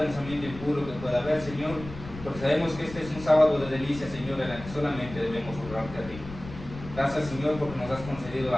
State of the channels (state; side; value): noise; left; rumble, 13 dB below the sound